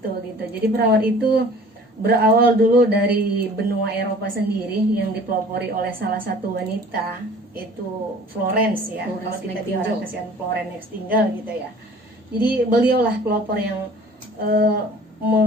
gitu. Jadi perawat itu berawal dulu dari benua Eropa sendiri yang dipelopori oleh salah satu wanita, itu Florence ya. Kalau kita di orang kasihan Florence Nightingale gitu ya. Jadi beliaulah pelopor yang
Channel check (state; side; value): normal; both; correlation 0.48